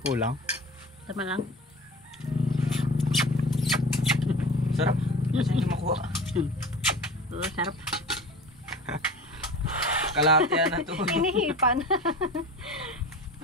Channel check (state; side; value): normal; both; correlation 0.36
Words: Kulang? Tama lang. Sarap. Kasi hindi makuha. Oo, sarap. Kalahati yan na to. Hinihipan.